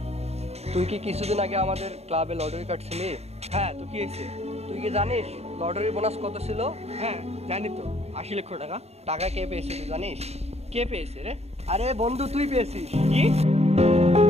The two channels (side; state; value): left; late; 0.31 ms